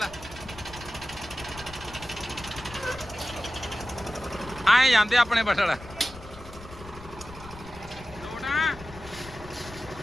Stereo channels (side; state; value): left; noise; rumble, 16 dB below the sound